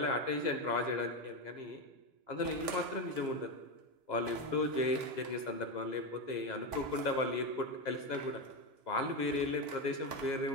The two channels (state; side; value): late; left; 3.5 ms